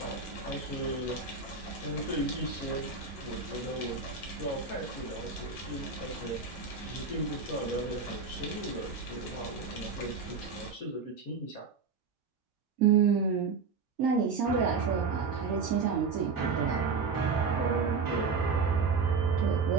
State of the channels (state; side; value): quieter; left; 4.9 dB